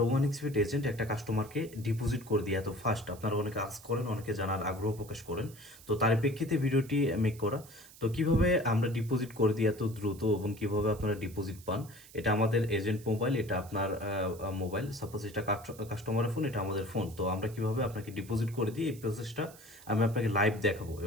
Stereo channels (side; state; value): right; noise; hiss, 20 dB below the sound